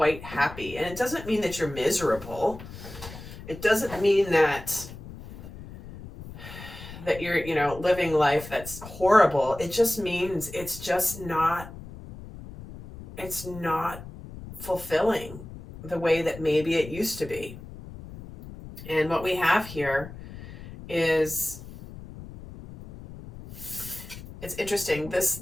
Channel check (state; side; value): noise; left; rumble, 14 dB below the sound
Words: happy. And it doesn't mean that you're miserable. It doesn't mean that you're, living life that's horrible. It just means it's not fulfilling the way that maybe it used to be. And what we have here is, it's interesting.